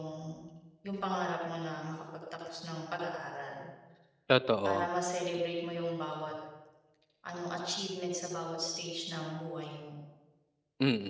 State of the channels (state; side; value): identical; both; correlation 1.00